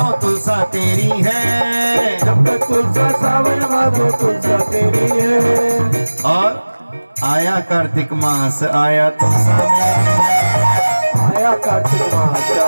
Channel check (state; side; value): inverted; both; correlation -1.00